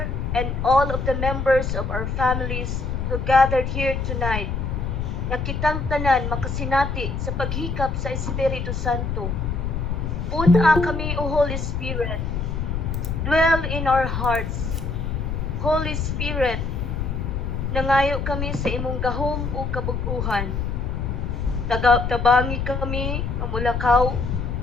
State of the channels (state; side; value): noise; left; rumble, 2 dB below the sound